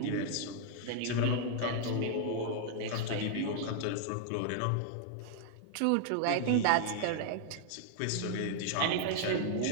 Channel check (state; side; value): different; both; correlation -0.01